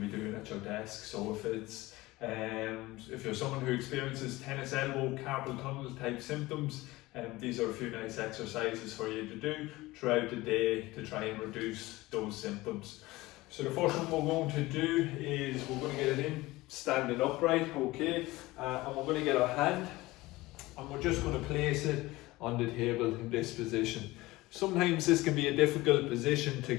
be doing at your desk. So if you're someone who experiences tennis elbow, carpal tunnel type symptoms, these are a few nice exercises for you to do throughout the day to try and reduce those symptoms. So the first one we're going to do is we're going to get it in standing upright, okay, and we're going to get our hand and we're just going to place it on the table in this position. Sometimes this can be a difficult position to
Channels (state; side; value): quieter; right; 19.7 dB